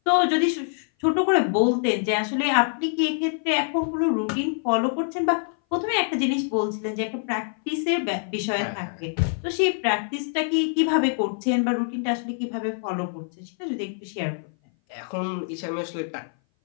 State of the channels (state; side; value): silent; right; 58 dB below the other